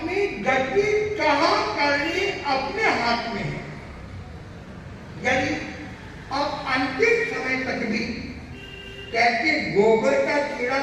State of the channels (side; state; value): both; identical; correlation 1.00